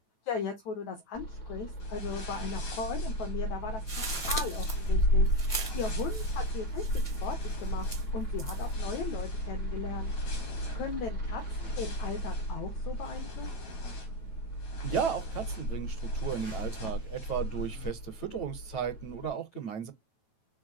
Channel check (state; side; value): late; right; 9.1 ms